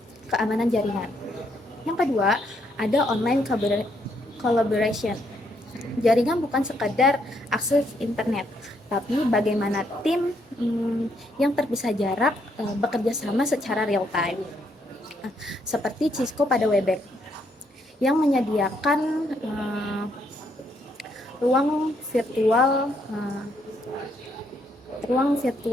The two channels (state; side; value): normal; both; correlation 0.73